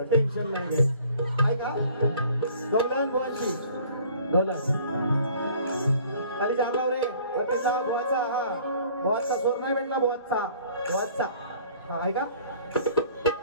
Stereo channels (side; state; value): both; inverted; correlation -0.53